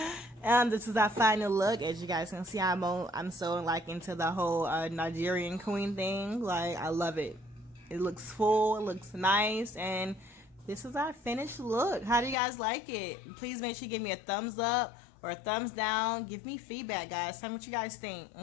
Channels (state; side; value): drops out; right; at 12.4 s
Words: This is our final look. As you guys can see, I'm so like into the whole Nigerian queen thing. Like, I love it. It looks full, it looks nice, and this is our finished look. How do you guys like it? Please make sure you give me a thumbs up or a thumbs down. Give me feedback, guys. Tell me what you guys think,